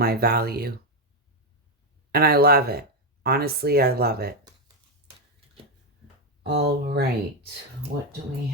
value. And I love it. Honestly, I love it. All right. What do we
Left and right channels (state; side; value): normal; both; correlation 0.05